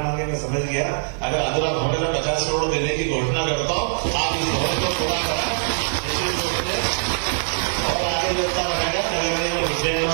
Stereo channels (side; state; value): left; silent; 55 dB below the other